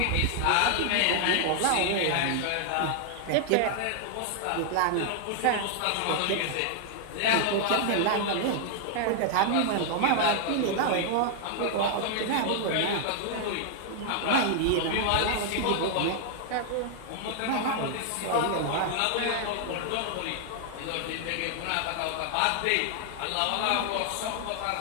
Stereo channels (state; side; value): different; both; correlation 0.00